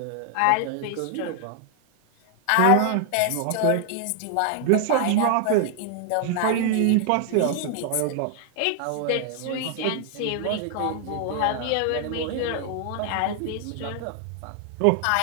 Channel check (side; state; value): both; different; correlation 0.00